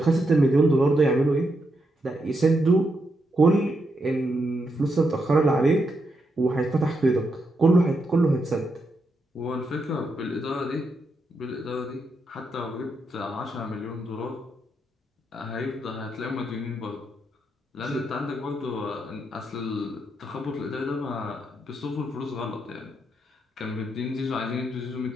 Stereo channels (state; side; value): normal; both; correlation 0.82